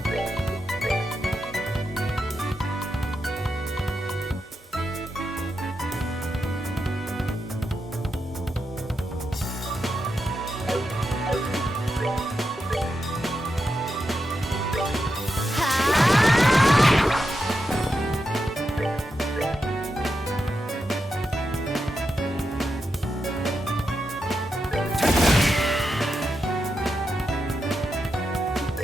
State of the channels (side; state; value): both; normal; correlation 0.87